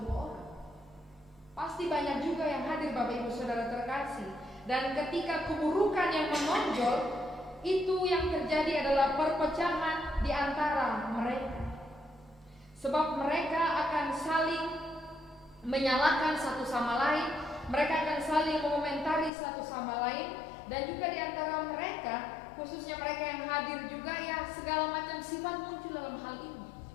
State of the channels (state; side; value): drops out; right; at 19.3 s